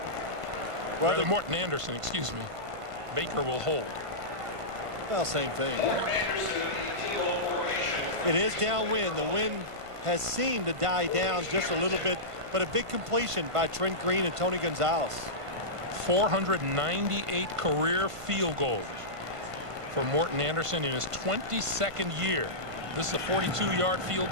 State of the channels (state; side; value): late; left; 1.5 ms